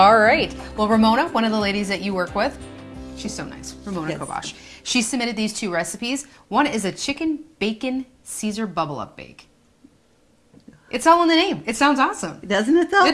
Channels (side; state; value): both; identical; correlation 1.00